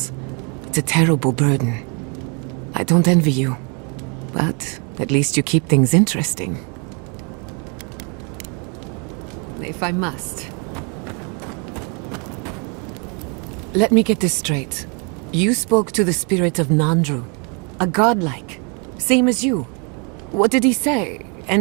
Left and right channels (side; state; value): left; quieter; 35.1 dB